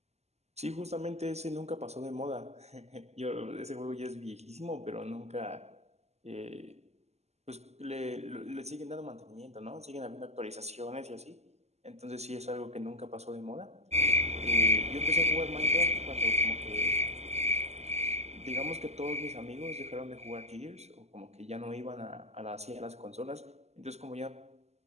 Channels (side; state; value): left; late; 0.31 ms